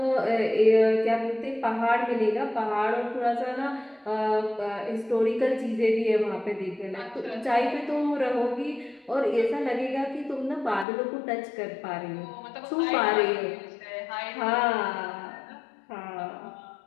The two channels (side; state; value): right; drops out; at 10.9 s